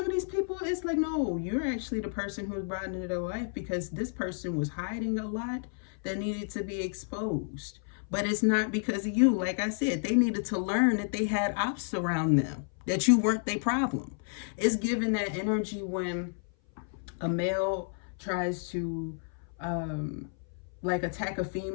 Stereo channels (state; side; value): silent; right; 56 dB below the other